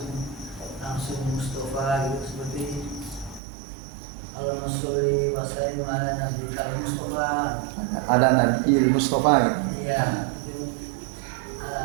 Mustafa gitu, seperti Allahumma sholli wa sallim ala Nabi kal Mustafa. Ada Nabi Mustafa gitu. Iya.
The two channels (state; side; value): drops out; left; at 3.4 s